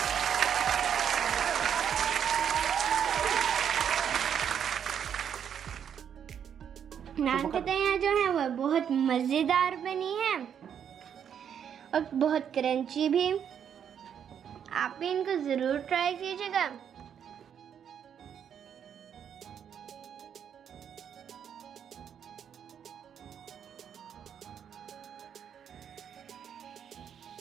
नान खताइयाँ जो हैं वो बहुत मज़ेदार बनी हैं और बहुत क्रंची भी। आप भी इनको ज़रूर ट्राई कीजिएगा।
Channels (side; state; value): left; quieter; 8.4 dB